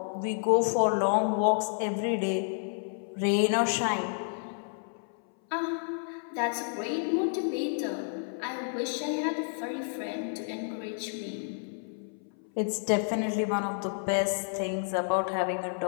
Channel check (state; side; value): silent; right; 58 dB below the other